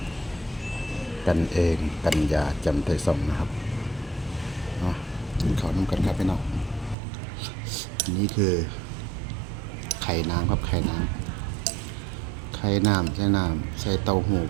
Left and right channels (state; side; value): drops out; left; at 7.0 s